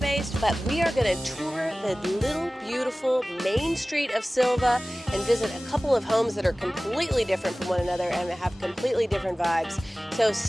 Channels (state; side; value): normal; both; correlation 0.98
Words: but we are going to tour the little beautiful main street of Sylvia and visit a couple of homes that are completely different from one another and have completely different vibes. So